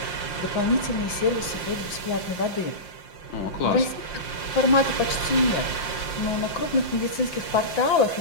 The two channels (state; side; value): late; right; 5.7 ms